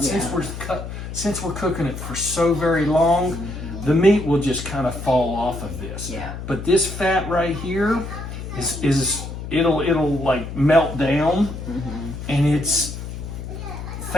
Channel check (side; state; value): left; noise; hum, 8 dB below the sound